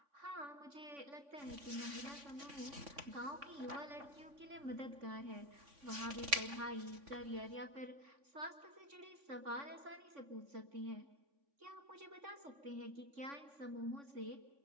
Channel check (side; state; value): left; late; 3.5 ms